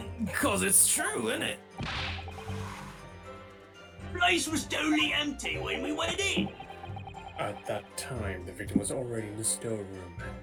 'cause it's true, isn't it? Place was totally empty when we went in. At that time, the victim was already in the storeroom,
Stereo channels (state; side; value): identical; both; correlation 1.00